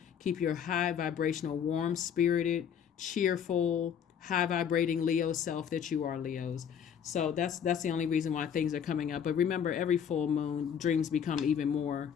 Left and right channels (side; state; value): right; quieter; 8.1 dB